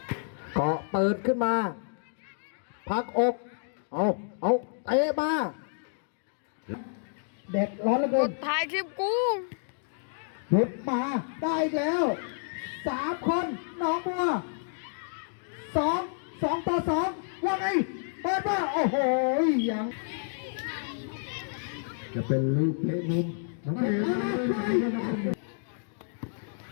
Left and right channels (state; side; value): silent; right; digital silence